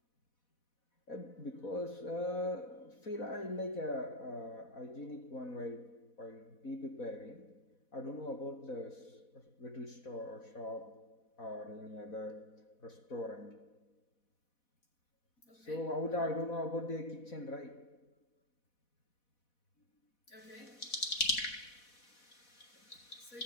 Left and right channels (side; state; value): right; late; 4.1 ms